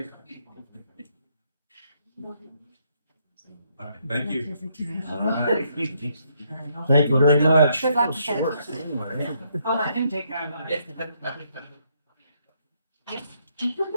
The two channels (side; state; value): both; inverted; correlation -0.73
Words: All right, thank you. All right. Thank you very much. Good luck with it. I'll let him take care of it.